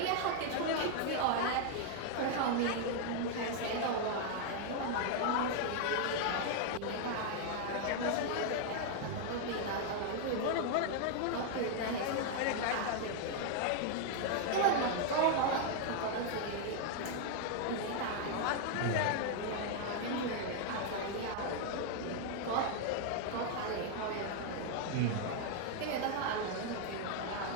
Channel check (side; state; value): both; different; correlation 0.00